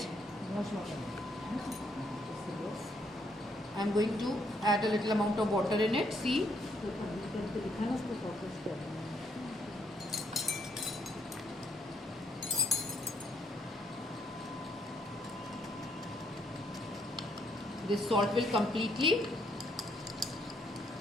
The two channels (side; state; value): both; normal; correlation 0.72